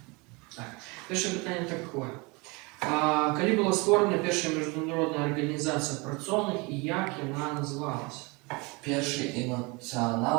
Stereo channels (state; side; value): quieter; left; 27.5 dB